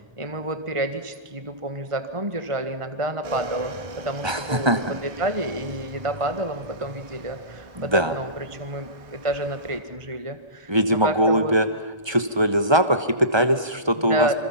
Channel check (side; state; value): left; late; 1.3 ms